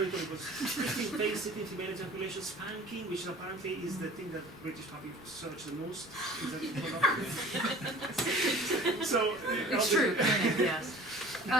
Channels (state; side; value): normal; both; correlation 0.45